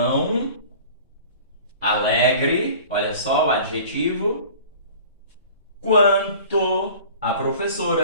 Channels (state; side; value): inverted; both; correlation -0.44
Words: alegre, olha só o adjetivo, quanto a